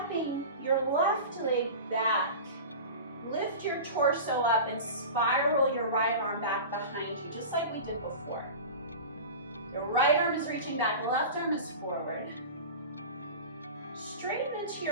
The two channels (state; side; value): inverted; both; correlation -0.32